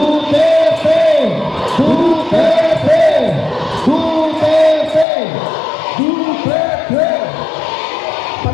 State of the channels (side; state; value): right; drops out; at 5.1 s